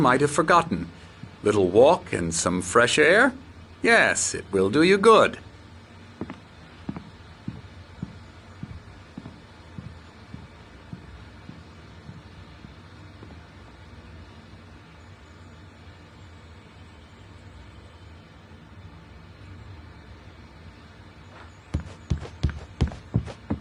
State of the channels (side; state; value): both; identical; correlation 1.00